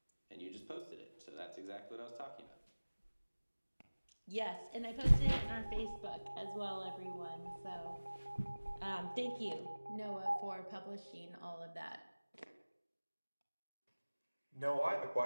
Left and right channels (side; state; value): both; inverted; correlation -1.00